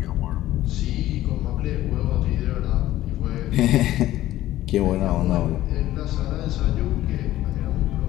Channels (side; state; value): right; quieter; 14.7 dB